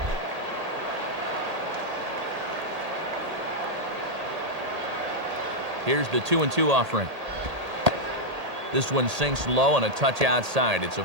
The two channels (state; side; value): late; left; 1.8 ms